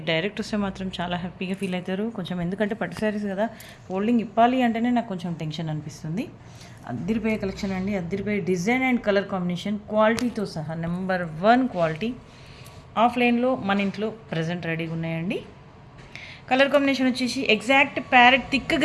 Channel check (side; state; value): both; identical; correlation 1.00